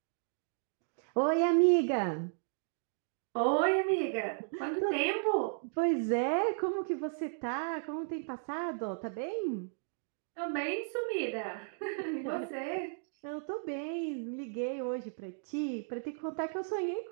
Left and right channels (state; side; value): silent; left; digital silence